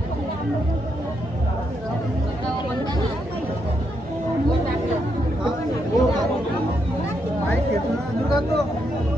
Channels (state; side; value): normal; both; correlation 0.79